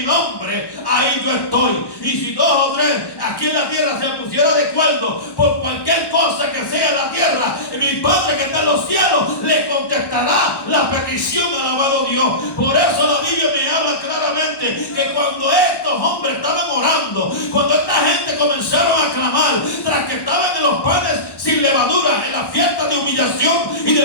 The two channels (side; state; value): right; late; 1.1 ms